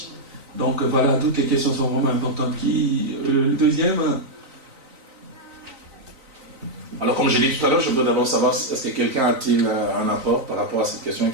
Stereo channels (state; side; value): late; left; 3.9 ms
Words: Donc voilà, toutes les questions sont vraiment importantes. Le deuxième... Alors, comme je l'ai dit tout à l'heure, je veux d'abord savoir est-ce que quelqu'un a-t-il un apport par rapport à cette question